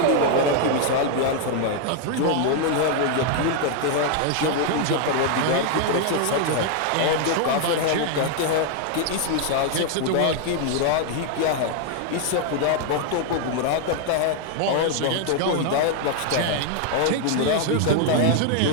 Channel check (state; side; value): different; both; correlation 0.00